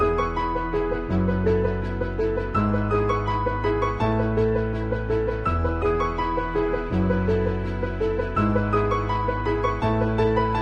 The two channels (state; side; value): identical; both; correlation 1.00